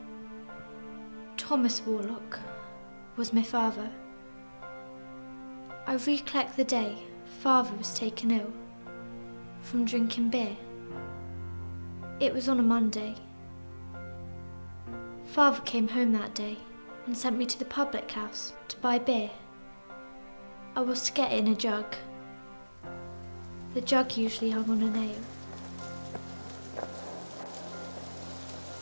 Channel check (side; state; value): both; inverted; correlation -1.00